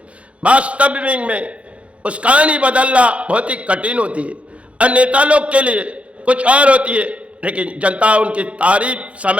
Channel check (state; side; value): late; left; 0.062 ms